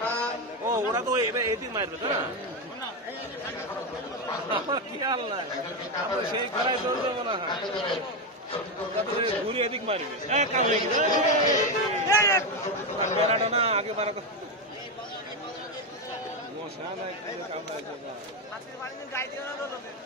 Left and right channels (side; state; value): both; normal; correlation 0.10